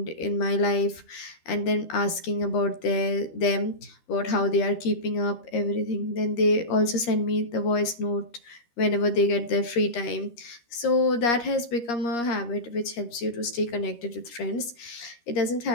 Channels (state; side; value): late; right; 13 ms